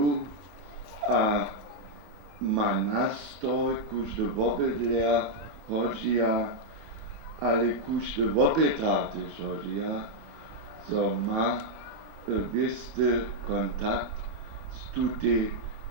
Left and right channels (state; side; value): late; left; 24 ms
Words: a má nástroj, kúžde vobydlia hodžia, ale kúžde vobydá tež hodžia, so má bysty kontakt s tutej